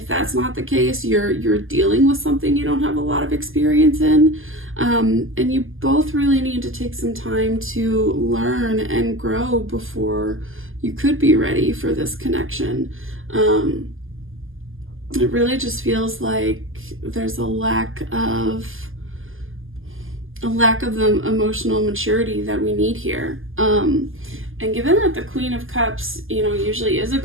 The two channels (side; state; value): left; late; 0.59 ms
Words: that's not the case, you're dealing with something you don't have a lot of experience in. And you both really need to take some time to learn and grow before you could be ready for this connection. It really just feels like there's a lack of the emotional maturity that we need here. And given that the Queen of Cups, you know, usually is a